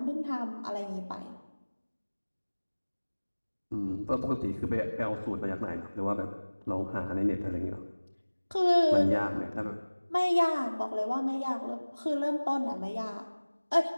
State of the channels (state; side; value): inverted; both; correlation -1.00